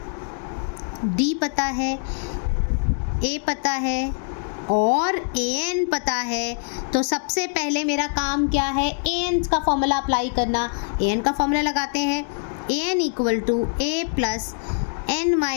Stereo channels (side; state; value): right; silent; 63 dB below the other